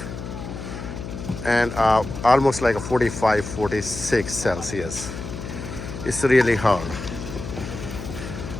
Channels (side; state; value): left; noise; hum, 9 dB below the sound